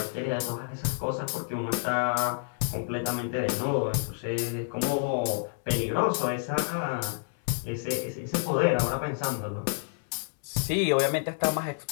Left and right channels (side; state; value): right; silent; 58 dB below the other